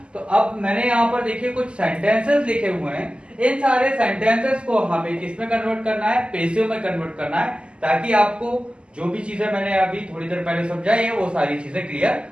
तो अब मैंने यहां पर देखिए कुछ सेंटेंसेस लिखे हुए हैं। इन सारे सेंटेंसेस को हमें किसमें कन्वर्ट करना है? पैसिव में कन्वर्ट करना है, ताकि आपको जो भी चीजें मैंने अभी थोड़ी देर पहले समझाई है वो सारी चीजें क्लियर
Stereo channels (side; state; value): left; late; 0.052 ms